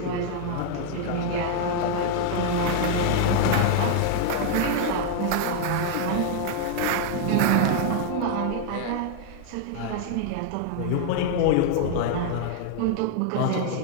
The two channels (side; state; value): both; different; correlation 0.00